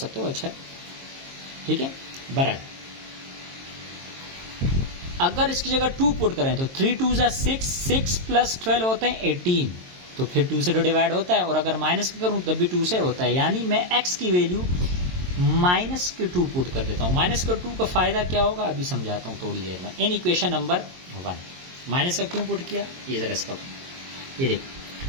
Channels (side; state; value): left; late; 22 ms